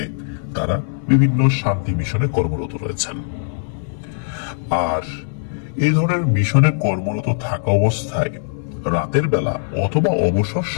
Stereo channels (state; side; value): silent; right; 66 dB below the other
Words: তারা বিভিন্ন শান্তি মিশনে কর্মরত রয়েছেন। আর এই ধরনের মিশনে কর্মরত থাকা অবস্থায় রাতের বেলা অথবা অবসর